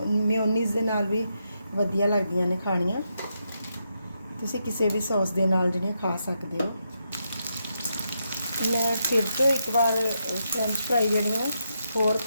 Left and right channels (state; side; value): inverted; both; correlation -0.82